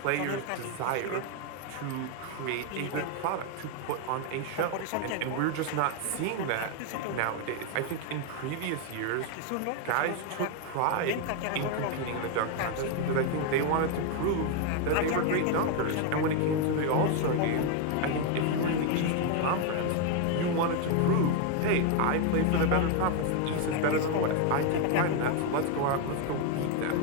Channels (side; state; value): both; different; correlation 0.01